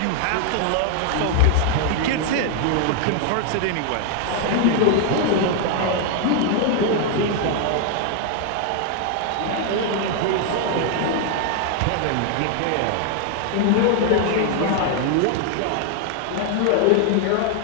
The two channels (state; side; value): different; both; correlation 0.00